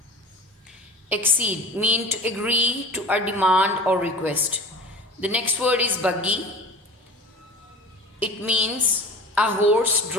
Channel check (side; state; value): both; normal; correlation 0.38